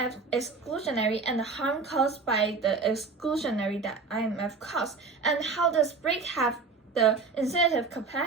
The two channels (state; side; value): quieter; left; 4.5 dB